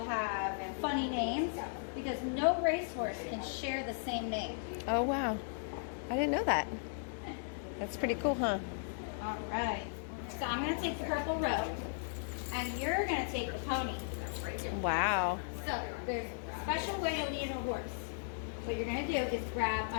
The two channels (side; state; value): right; silent; digital silence